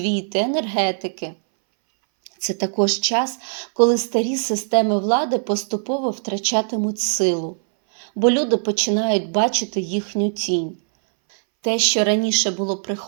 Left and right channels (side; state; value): left; silent; 64 dB below the other